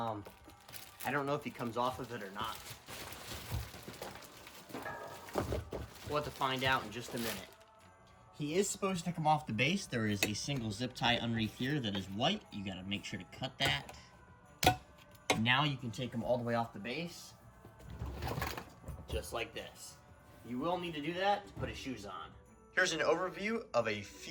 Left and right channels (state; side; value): identical; both; correlation 1.00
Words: don't know if he comes off of it or not. We'll have to find out in just a minute. He is supposed to come off the base. There is a single zip tie underneath here that is white. You gotta make sure to cut that. Now you can take him all the way off the base. Just like this. You will need to do that to put his shoes on. Here's an overview of a